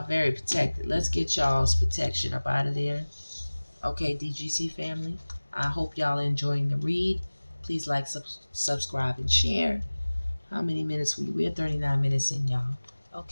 very protected. Let's get y'all's protection up out of there. Okay, DGC family. I hope y'all are enjoying the read. Please like, subscribe, and share. How many minutes we're 39 minutes in, y'all.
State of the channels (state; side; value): inverted; both; correlation -1.00